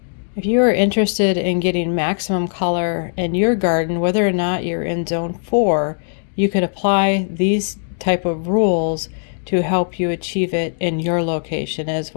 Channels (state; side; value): silent; right; 66 dB below the other